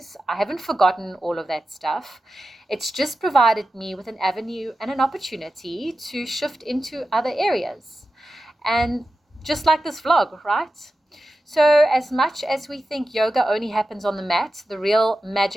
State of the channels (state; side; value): normal; both; correlation 0.93